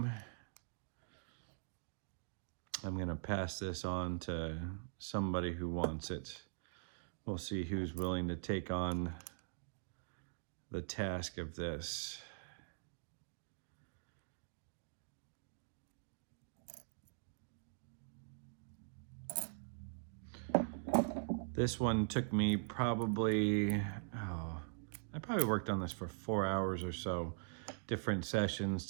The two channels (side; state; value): left; silent; digital silence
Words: I'm going to pass this on to somebody who wants it. We'll see who's willing to take on the task of this. This one took me probably, I probably worked on this for 4 hours or so, different sessions